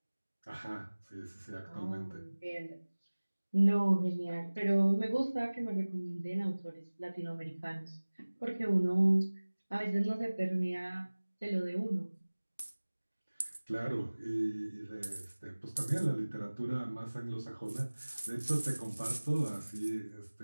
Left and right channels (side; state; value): both; inverted; correlation -1.00